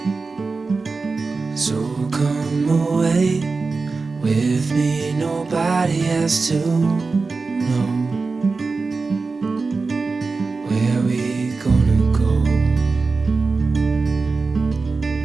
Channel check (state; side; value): quieter; left; 4.1 dB